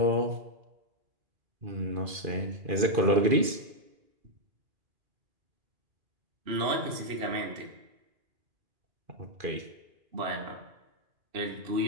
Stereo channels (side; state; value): left; late; 2.4 ms